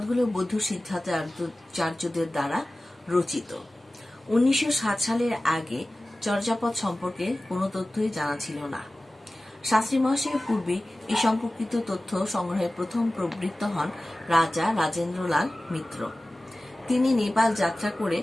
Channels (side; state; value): both; normal; correlation 0.97